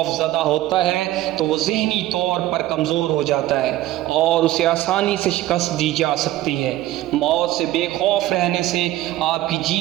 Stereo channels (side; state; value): left; quieter; 15.2 dB